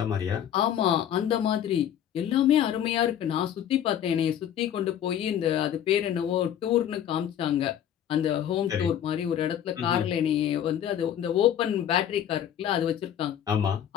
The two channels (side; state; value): right; quieter; 10.0 dB